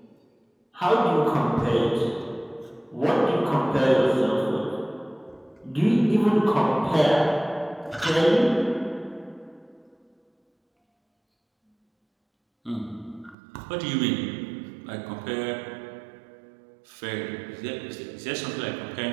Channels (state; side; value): drops out; left; at 13.4 s